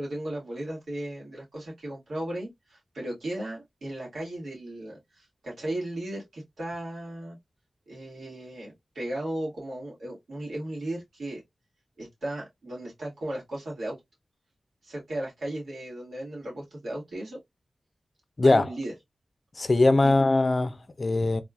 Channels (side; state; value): both; normal; correlation 0.97